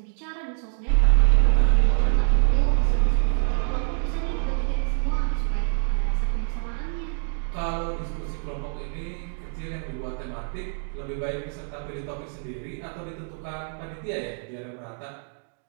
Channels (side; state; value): left; silent; digital silence